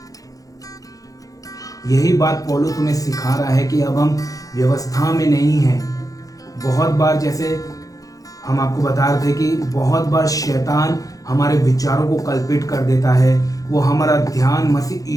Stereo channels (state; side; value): late; right; 0.17 ms